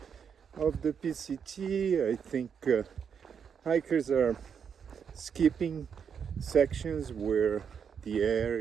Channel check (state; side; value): quieter; left; 7.1 dB